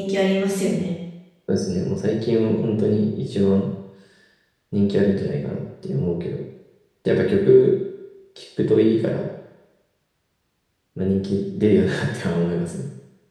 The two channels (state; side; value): identical; both; correlation 1.00